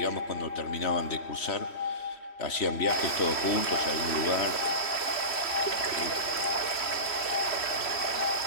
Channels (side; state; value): right; late; 3.1 ms